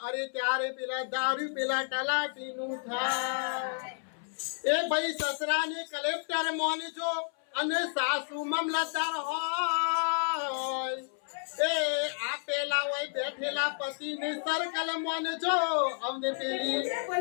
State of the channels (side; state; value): right; silent; 57 dB below the other